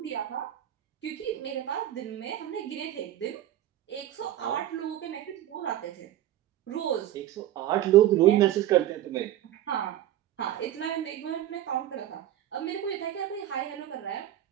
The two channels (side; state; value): left; quieter; 12.6 dB